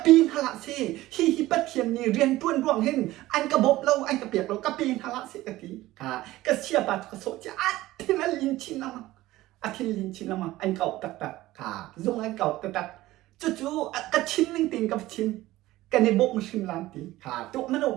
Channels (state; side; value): quieter; left; 16.9 dB